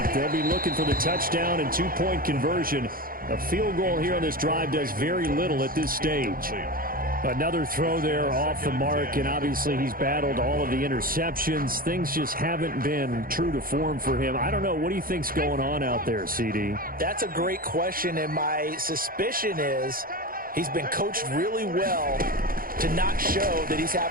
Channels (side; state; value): left; late; 0.42 ms